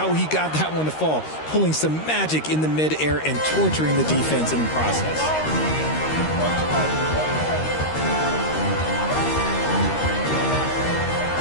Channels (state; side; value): late; right; 13 ms